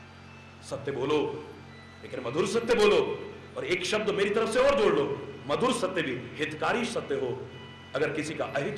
सत्य बोलो लेकिन मधुर सत्य बोलो। और एक शब्द मेरी तरफ से और जोड़ लो, मधुर सत्य भी हितकारी सत्य हो। अगर किसी का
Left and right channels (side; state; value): both; identical; correlation 1.00